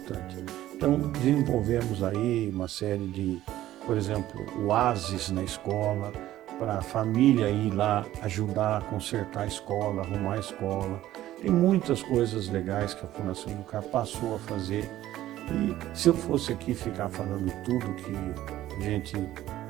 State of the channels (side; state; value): left; quieter; 14.1 dB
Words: Então, desenvolvemos aí uma série de, por exemplo, oásis na escola, para a família ir lá ajudar a consertar a escola, arrumar a escola. Tem muitas coisas legais que a Fundação Educar passou a fazer. E se eu fosse aqui ficar falando tudo que a gente